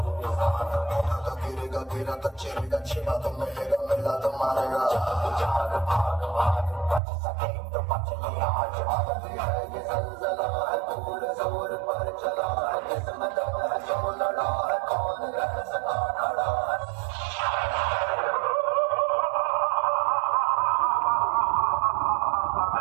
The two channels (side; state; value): left; drops out; at 7.0 s